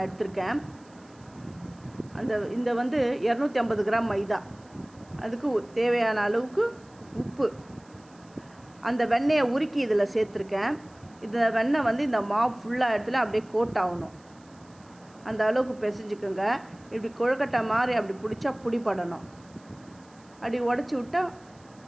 எடுத்திருக்கேன். இந்த 250 கிராம் மைதா, அதுக்கு தேவையான அளவுக்கு உப்பு, அந்த வெண்ணெயை உருக்கி இதில் சேர்த்துருக்கேன். இந்த வெண்ணெய் இந்த மாவு ஃபுல்லாக இடத்துல அப்படியே கோட் ஆகணும். அந்த அளவுக்கு பிசைஞ்சுக்கோங்க. இப்படி கொழுக்கட்டை மாதிரி அப்படி பிடிச்சா பிடிப்படணும். அப்படி உடச்சி விட்டால்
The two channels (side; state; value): right; noise; hiss, 29 dB below the sound